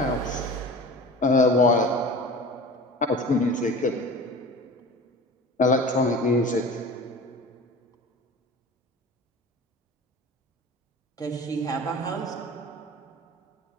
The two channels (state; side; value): normal; both; correlation 0.37